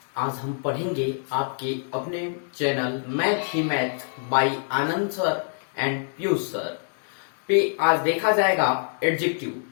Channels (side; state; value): right; silent; digital silence